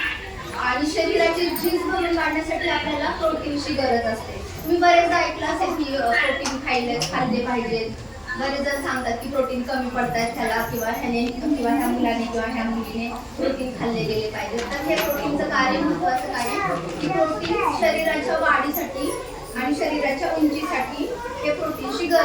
आणि शरीराची झीज भरून काढण्यासाठी आपल्याला प्रोटीनची गरज असते. तुम्ही बरेचदा ऐकलं असेल की प्रोटीन खाल्ले पाहिजेत. बरेच जण सांगतात की प्रोटीन कमी पडतात त्याला, किंवा ह्या मुलाने किंवा ह्या मुलीने प्रोटीन खाल्ले गेले पाहिजे. तर हे प्रोटीनचं कार्य महत्त्वाचं काय की प्रोटीन शरीराच्या वाढीसाठी आणि शरीराच्या उंचीसाठी हे प्रोटीनची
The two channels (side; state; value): both; identical; correlation 1.00